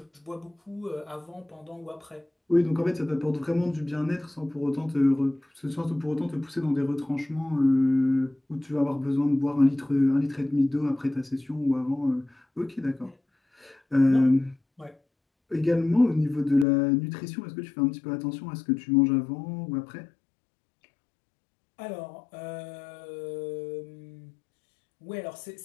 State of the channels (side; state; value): right; drops out; at 16.7 s